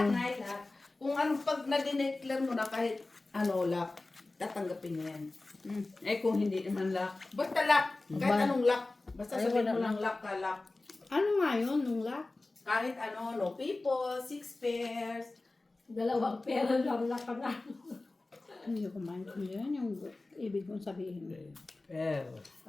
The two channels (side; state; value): right; quieter; 3.1 dB